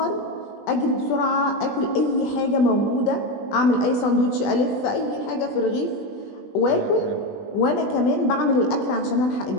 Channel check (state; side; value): late; right; 20 ms